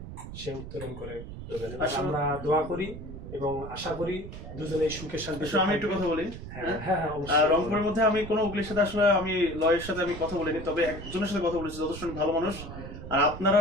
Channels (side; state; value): right; noise; rumble, 11 dB below the sound